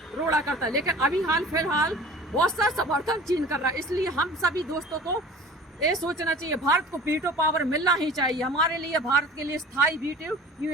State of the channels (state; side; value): normal; both; correlation 0.42